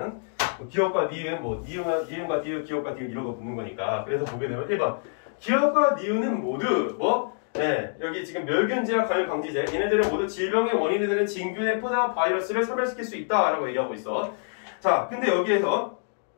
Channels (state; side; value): silent; right; digital silence